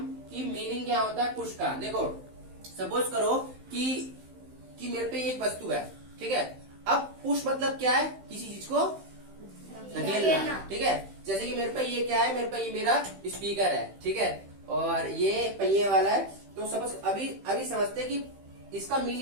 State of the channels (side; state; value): left; late; 15 ms